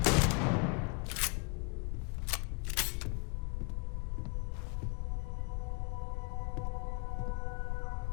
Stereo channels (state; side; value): quieter; right; 32.7 dB